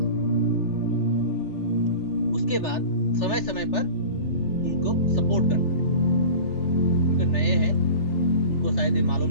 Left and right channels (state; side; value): late; right; 3.4 ms